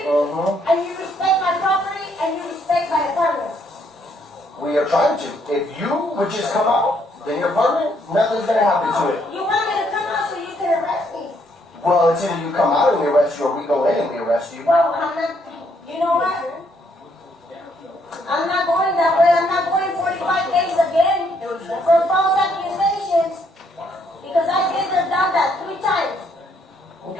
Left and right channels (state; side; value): normal; both; correlation 0.70